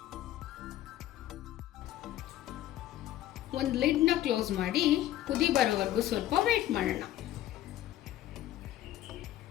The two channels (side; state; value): right; quieter; 13.6 dB